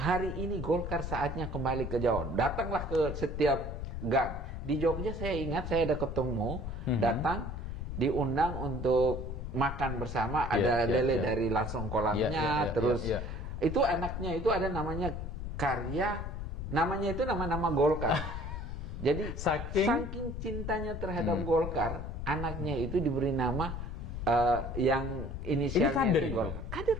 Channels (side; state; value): left; noise; rumble, 6 dB below the sound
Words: ini Golkar saatnya kembali ke Jawa. Datanglah ke setiap gang. Di Jogja saya ingat saya ada ketemu, datang diundang untuk makan bersama, ada lele dari langsung kolamnya, terus itu anaknya itu ada namanya Karya, namanya itu nama-nama Golkar. Jadi saking cintanya terhadap Golkar, anaknya itu diberi nama yang inisialnya itu Golkar. Kader